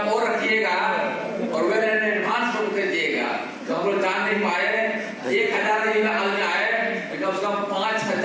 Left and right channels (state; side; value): identical; both; correlation 1.00